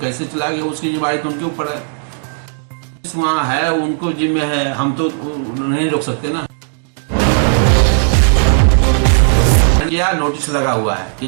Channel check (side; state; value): left; silent; digital silence